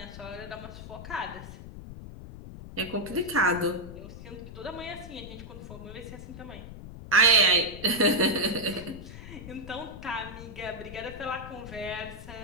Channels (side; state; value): left; noise; rumble, 12 dB below the sound